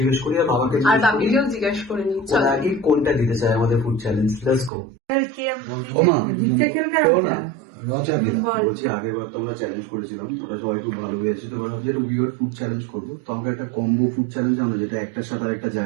করি আর বাবাকে জিজ্ঞেস করে নিই ওরা আগে কোনটা দিতে চায় আমাদের ফুড চ্যালেঞ্জ। Let's go. বলছি আগেরবার তো আমরা চ্যালেঞ্জ করেছিলাম, ওটা সবাই খুব ভালো হয়েছে। তো এবার ভাবছি একটা উইয়ার্ড ফুড চ্যালেঞ্জ করবো। তো আমরা একটা কম্বো ফুড চ্যালেঞ্জ আমরা যেটা একটার সাথে আর একটা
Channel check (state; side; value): drops out; left; at 4.7 s